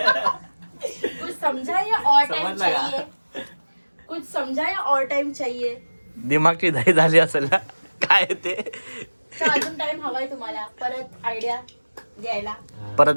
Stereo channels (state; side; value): inverted; both; correlation -1.00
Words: कुछ समझा या और टाइम समजला का? चाहिए? कुछ समझा या और टाइम चाहिए? दिमागची दही झाली असेल ना काय ते. तर अजून टाइम हवाय तुम्हाला परत आयडिया द्यायला?